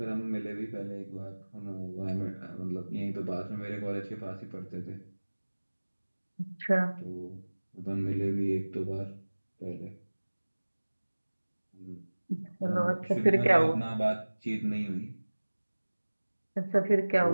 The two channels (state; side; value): inverted; both; correlation -1.00